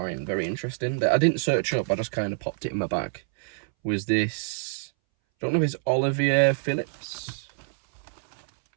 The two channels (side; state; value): left; silent; 61 dB below the other